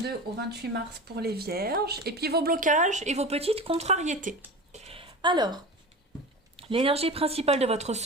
au 28 mars pour les Vierges, et puis vos blocages et vos petites contrariétés. Alors, l'énergie principale de votre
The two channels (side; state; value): both; normal; correlation 0.31